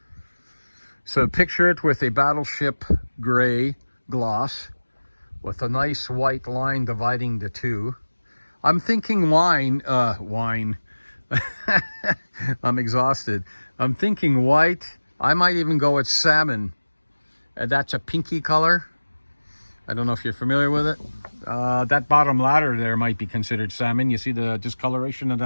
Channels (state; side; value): inverted; both; correlation -1.00